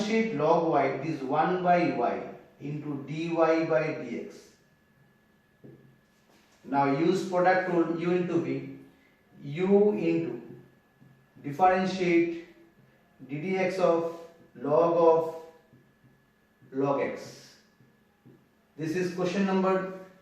log y, it is 1 by y into dy by dx. Now use product rule, u into v, u into differentiate ddx of log x. This is question number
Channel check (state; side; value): identical; both; correlation 1.00